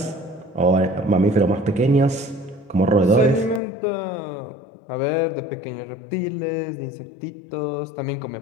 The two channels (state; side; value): drops out; right; at 3.6 s